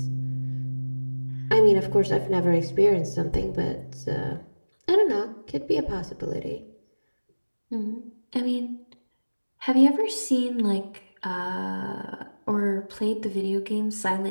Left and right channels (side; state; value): both; inverted; correlation -1.00